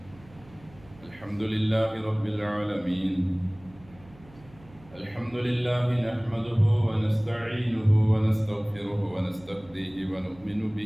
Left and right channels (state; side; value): noise; right; hum, 24 dB below the sound